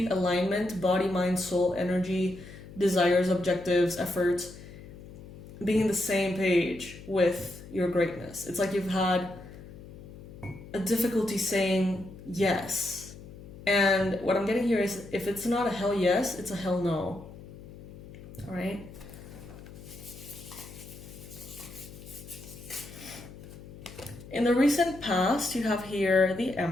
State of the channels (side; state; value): left; noise; hum, 16 dB below the sound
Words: alignment, body, mind, soul, energy, desires, objectives, efforts, being in the same page with your greatness. It's like you've had a difficulty saying yes. And what I'm getting here is, if it's not a hell yes, it's a hell no. All right? In the recent past, you have here the